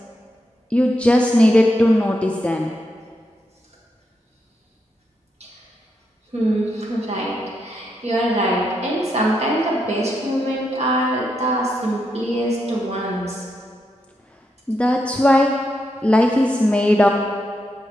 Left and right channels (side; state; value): both; normal; correlation 0.82